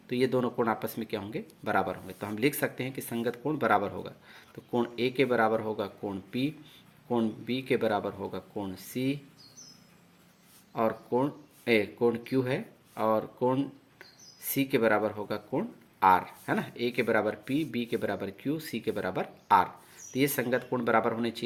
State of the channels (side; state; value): both; identical; correlation 1.00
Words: तो ये दोनों कोण आपस में क्या होंगे, बराबर होंगे। तो हम लिख सकते हैं कि संगत कोण बराबर होगा। तो कोण A के बराबर होगा कोण P, कोण B के बराबर होगा कोण C, और कोण Q है, और कोण C के बराबर होगा कोण R, है ना। A के बराबर P, B के बराबर Q, C के बराबर R। तो ये संगत कोण बराबर होने